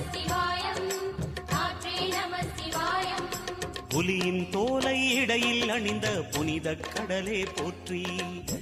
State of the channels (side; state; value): both; identical; correlation 1.00